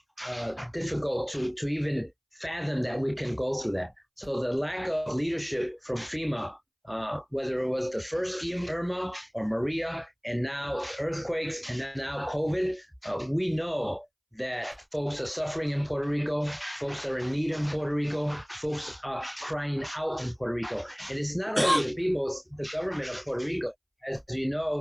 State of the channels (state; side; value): identical; both; correlation 1.00